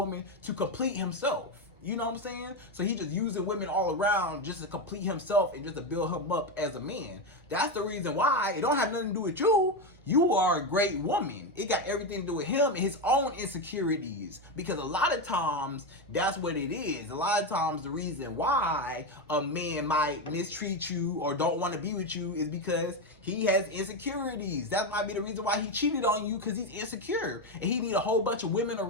to complete himself. You know what I'm saying? So he just using women all around just to complete himself and just to build him up as a man. That's the reason why it don't have nothing to do with you. You are a great woman. It got everything to do with him and his own insecurities. Because a lot of times, that's what it is. A lot of times, the reason why a man might mistreat you or don't want to be with you is because he has insecurities. That might be the reason why he cheated on you, because he's insecure. And he need a whole bunch of women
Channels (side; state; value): both; normal; correlation 0.11